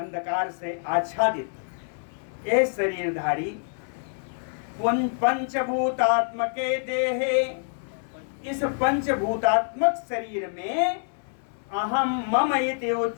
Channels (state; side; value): silent; right; digital silence